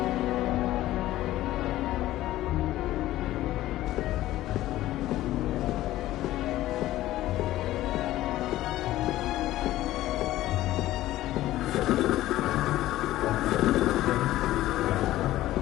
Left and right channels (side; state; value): right; quieter; 15.2 dB